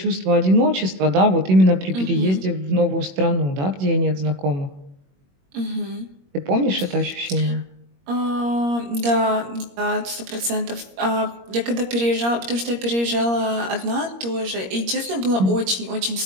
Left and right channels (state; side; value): late; left; 21 ms